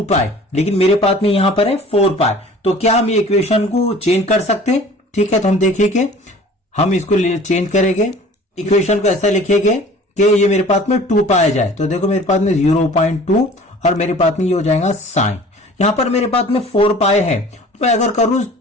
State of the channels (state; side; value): normal; both; correlation 0.46